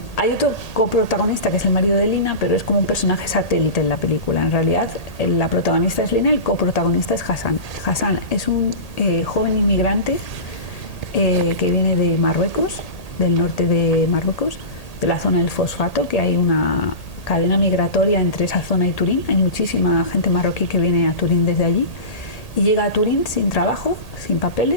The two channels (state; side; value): late; right; 1.8 ms